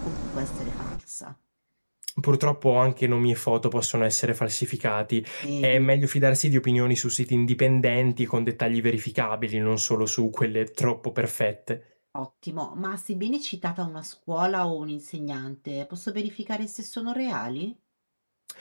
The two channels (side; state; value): both; inverted; correlation -1.00